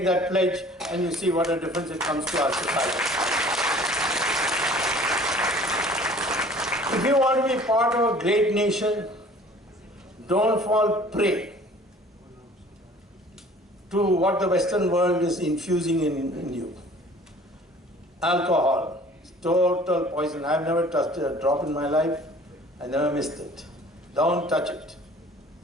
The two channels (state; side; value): normal; both; correlation 0.50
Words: that pledge and you see what a difference it comes to our society. If you want to be part of a great nation, don't fall prey to what the Western world is infusing in you. Alcohol, total poison. I've never touched a drop in my life. I never missed it. Don't touch it.